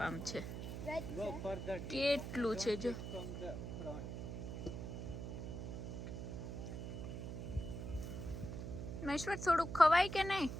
છે. કેટલું છે જો. મહેશ્વર થોડુંક ખવાય કે નહીં?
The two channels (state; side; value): noise; right; hum, 6 dB below the sound